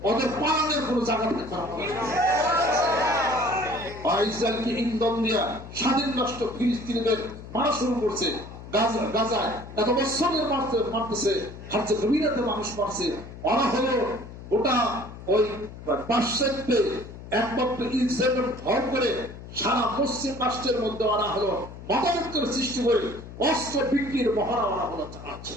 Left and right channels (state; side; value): noise; left; hum, 14 dB below the sound